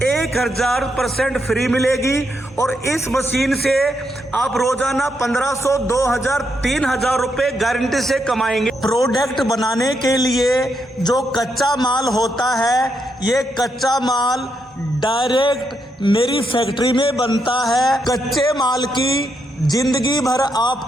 1000% फ्री मिलेगी। और इस मशीन से आप रोजाना 1500, 2000, 3000 रुपए गारंटी से कमाएंगे। प्रोडक्ट बनाने के लिए जो कच्चा माल होता है, ये कच्चा माल डायरेक्ट मेरी फैक्ट्री में बनता है। कच्चे माल की जिंदगी भर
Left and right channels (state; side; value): normal; both; correlation 0.80